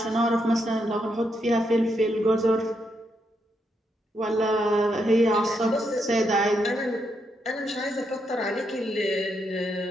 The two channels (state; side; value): normal; both; correlation 0.79